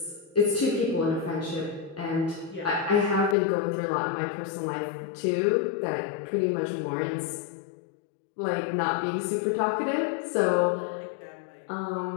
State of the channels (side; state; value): right; drops out; at 3.4 s